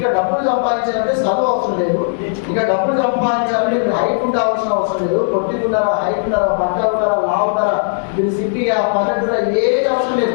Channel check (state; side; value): silent; right; digital silence